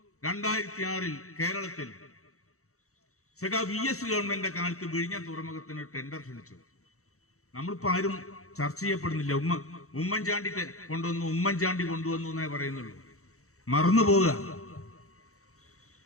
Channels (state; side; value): late; right; 0.64 ms